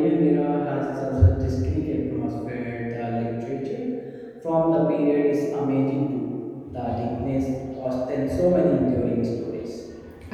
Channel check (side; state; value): both; identical; correlation 1.00